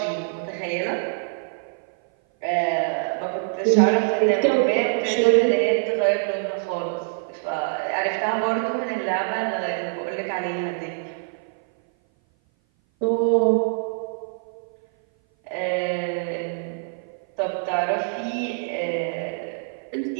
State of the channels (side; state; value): left; silent; 57 dB below the other